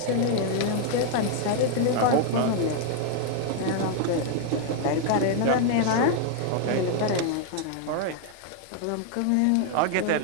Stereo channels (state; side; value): different; both; correlation 0.00